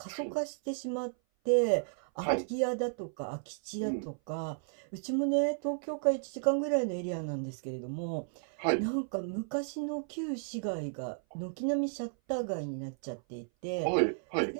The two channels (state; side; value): silent; left; 55 dB below the other